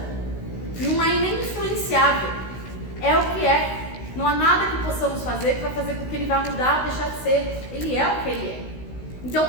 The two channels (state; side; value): late; right; 16 ms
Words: Não é nem influenciável. É o que é. Não há nada que possamos fazer que vai fazer com que ele vá mudar ou deixar de ser. Ele é o que ele é. Então,